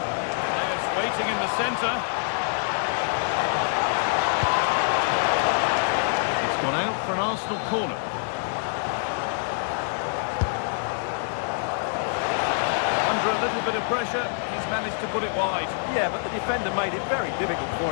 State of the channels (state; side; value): silent; right; 61 dB below the other